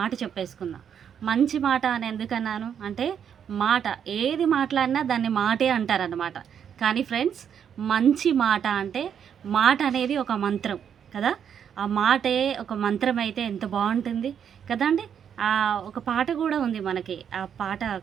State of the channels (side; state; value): left; quieter; 8.2 dB